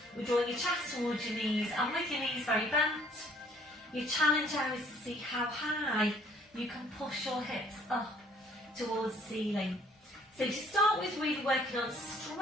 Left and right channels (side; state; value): both; normal; correlation 0.60